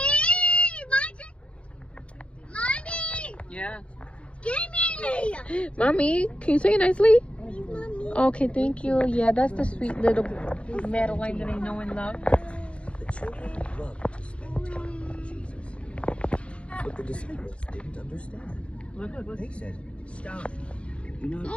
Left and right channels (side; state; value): right; late; 0.060 ms